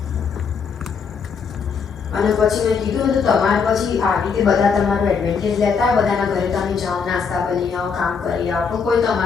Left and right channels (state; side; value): quieter; right; 5.9 dB